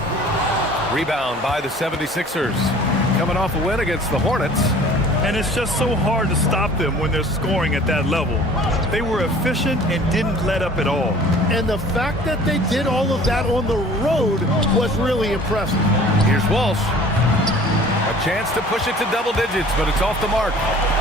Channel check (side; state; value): both; normal; correlation 0.48